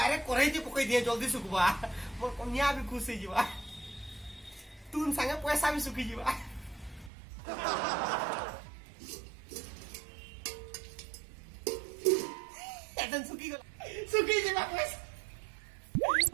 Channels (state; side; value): drops out; left; at 7.1 s